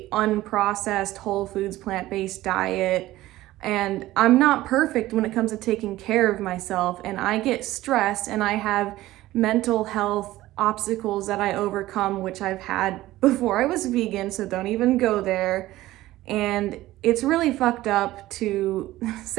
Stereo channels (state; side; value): quieter; left; 16.3 dB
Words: unprocessed whole foods plant-based diet. And I'm not perfect when it comes to taking care of myself, and I get stressed and I have mental health obstacles that I overcome, which I've had before I was vegan, so don't even go there. And it's really fucked up to